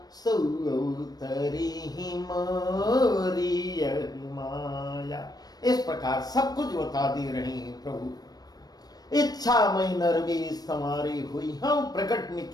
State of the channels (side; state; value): right; late; 0.19 ms